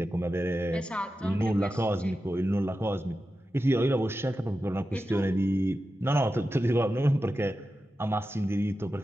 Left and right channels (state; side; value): normal; both; correlation 0.92